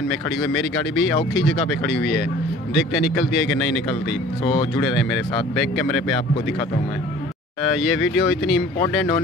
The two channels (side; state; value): both; normal; correlation 0.48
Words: में खड़ी हुई है, मेरी गाड़ी भी औखी जगह पर खड़ी हुई है। देखते हैं निकलती है कि नहीं निकलती। सो जुड़े रहें मेरे साथ, बैक कैमरे पर आपको दिखाता हूँ मैं। ये वीडियो इतनी इम्पोर्टेंट